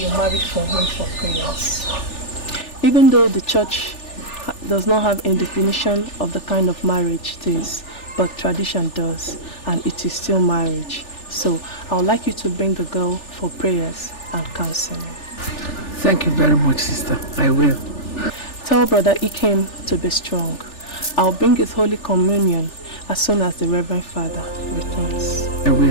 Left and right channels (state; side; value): late; right; 3.4 ms